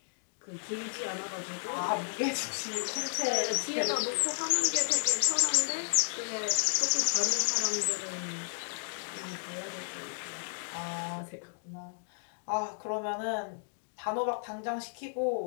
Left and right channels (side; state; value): right; silent; digital silence